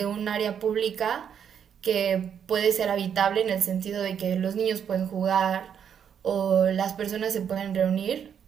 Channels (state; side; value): quieter; left; 8.1 dB